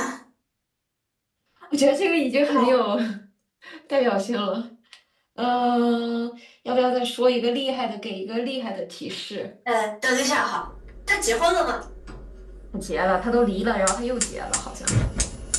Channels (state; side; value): identical; both; correlation 1.00